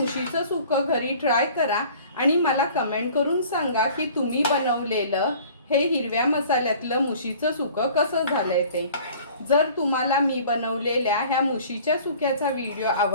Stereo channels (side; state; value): both; inverted; correlation -0.49